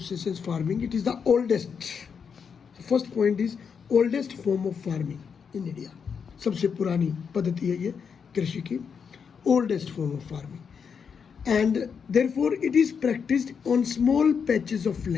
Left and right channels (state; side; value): quieter; right; 6.5 dB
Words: farming. It is the oldest. The first point is oldest form of farming in India. सबसे पुरानी पद्धति है ये कृषि की, oldest form of farming, and therefore it is practiced on small patches of